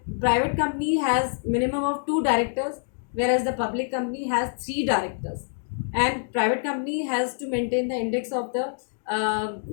private company has minimum of 2 directors, whereas the public company has 3 directors. And private company has to maintain the index of the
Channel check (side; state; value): right; silent; digital silence